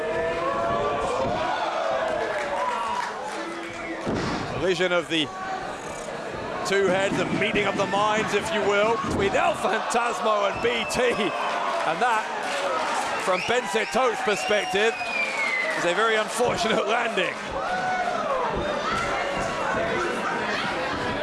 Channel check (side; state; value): both; identical; correlation 1.00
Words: Collision of the two heads, a meeting of the minds, if you will, between El Phantasmo and BT, and that, from Bence Tóth's perspective, is a very unfortunate landing.